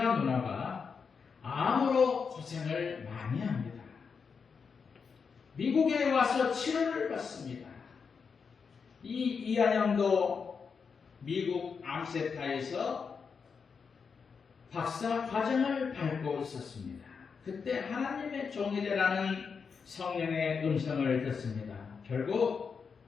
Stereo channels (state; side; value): quieter; right; 5.7 dB